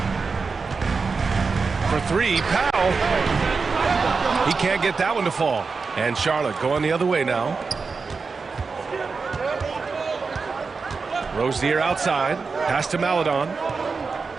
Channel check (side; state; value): left; quieter; 4.7 dB